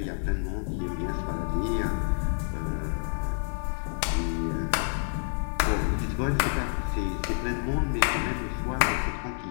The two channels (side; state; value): right; silent; digital silence